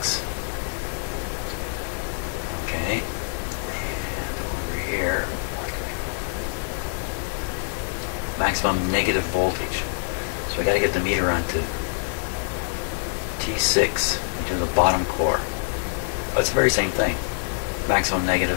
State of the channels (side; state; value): right; silent; digital silence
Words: Okay, and over here, maximum negative voltage. So I got to get the meter onto T6 into the bottom core. But it's the very same thing. Maximum